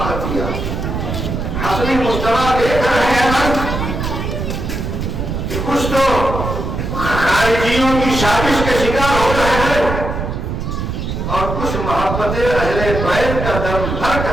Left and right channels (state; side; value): noise; right; rumble, 4 dB below the sound